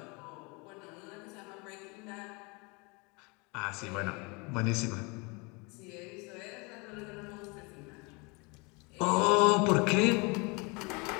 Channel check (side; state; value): right; quieter; 29.0 dB